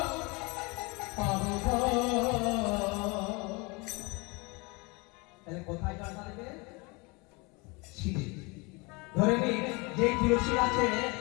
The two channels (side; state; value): right; quieter; 27.7 dB